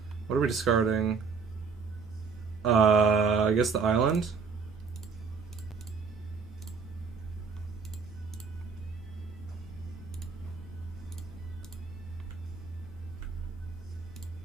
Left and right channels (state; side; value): quieter; left; 5.3 dB